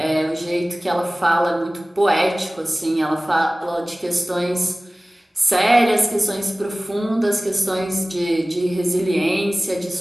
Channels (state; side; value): normal; both; correlation 0.98